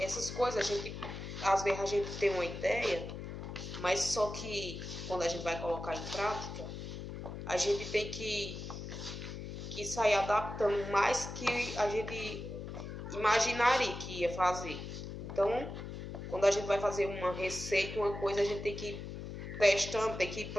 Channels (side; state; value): left; noise; hum, 8 dB below the sound